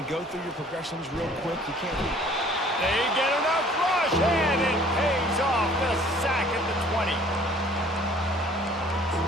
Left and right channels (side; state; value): both; normal; correlation 0.54